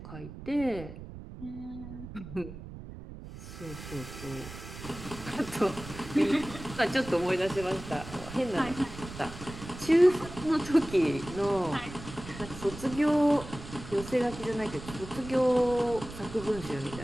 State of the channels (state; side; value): noise; right; rumble, 12 dB below the sound